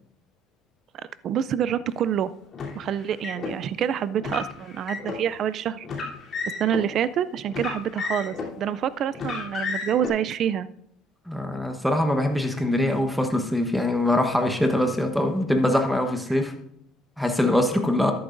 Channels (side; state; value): both; normal; correlation 0.69